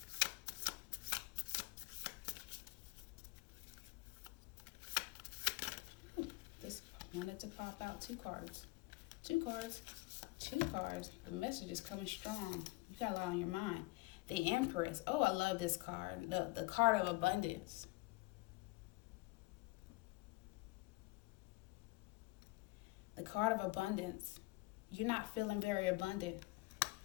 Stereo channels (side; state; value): right; quieter; 22.1 dB